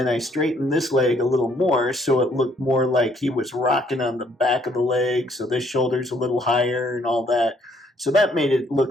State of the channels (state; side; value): normal; both; correlation 0.66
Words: I straightened this leg a little more so it looked more like he was rocking on the back of the leg, so this shoulder's a little higher and all that. So that made it